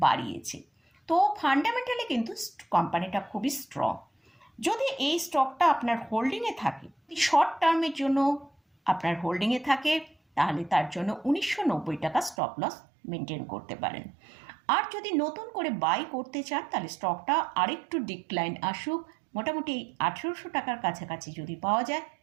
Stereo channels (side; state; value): left; drops out; at 12.4 s